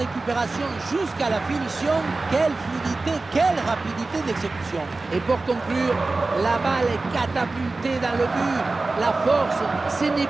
jusqu'à la finition, quelle fluidité, quelle rapidité d'exécution. Et pour conclure, la balle est catapultée dans le but. La force, ce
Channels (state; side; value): quieter; left; 3.4 dB